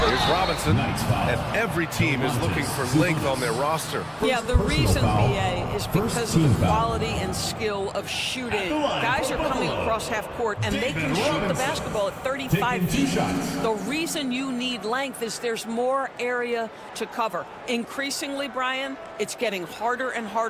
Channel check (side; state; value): both; identical; correlation 1.00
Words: Here's Robinson, and every team is looking for length on their roster. Yeah, the reason, BA, is because of the quality and skill of shooting. Guys are coming across half court, and they can shoot the basketball at 35 feet. The reason you need length is there's more area to cover. Increasingly, Brian, it's getting harder and